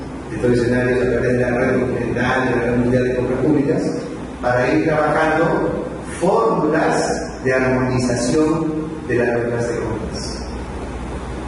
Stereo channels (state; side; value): identical; both; correlation 1.00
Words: de estos escenarios a través de la red continental, de la red mundial de compras públicas, para ir trabajando fórmulas de armonización de las reglas de compras.